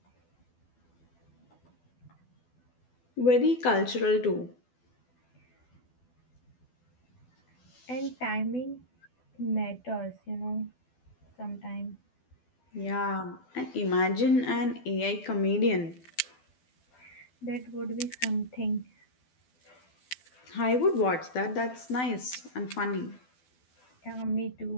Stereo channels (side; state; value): right; late; 12 ms